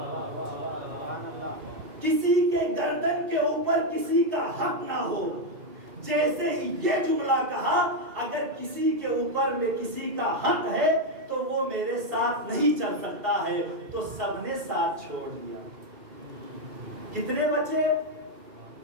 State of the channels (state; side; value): late; left; 2.7 ms